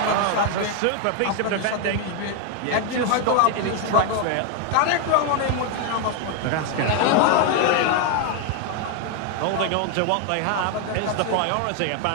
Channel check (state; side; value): different; both; correlation 0.01